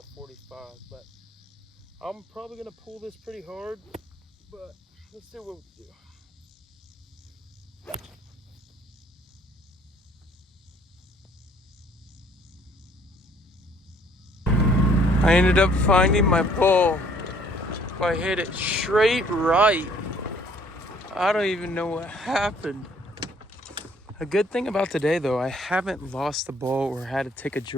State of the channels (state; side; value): normal; both; correlation 0.61